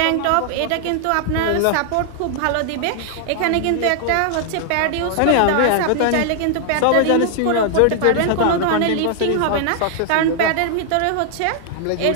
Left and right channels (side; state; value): both; different; correlation 0.00